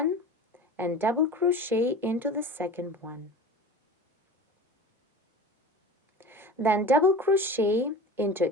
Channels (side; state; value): both; normal; correlation 0.36